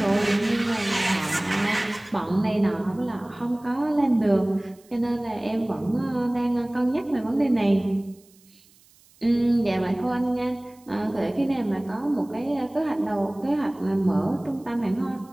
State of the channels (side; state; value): right; noise; hiss, 29 dB below the sound